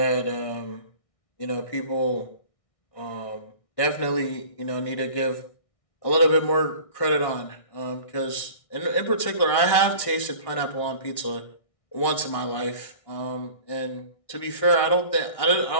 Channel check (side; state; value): right; late; 1.6 ms